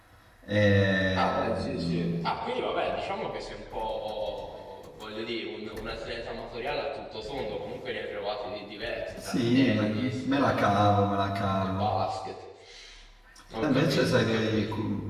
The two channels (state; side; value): identical; both; correlation 1.00